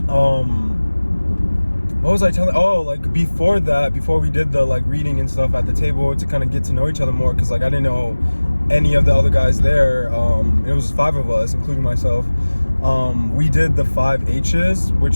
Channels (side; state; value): both; inverted; correlation -1.00